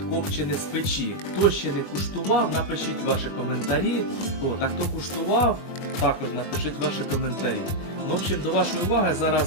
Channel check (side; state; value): right; late; 21 ms